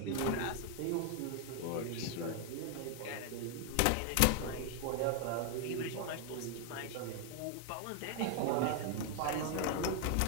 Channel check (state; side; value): different; both; correlation 0.00